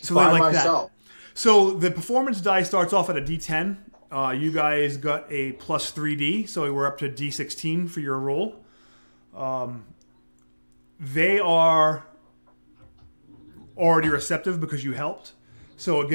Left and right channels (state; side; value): inverted; both; correlation -1.00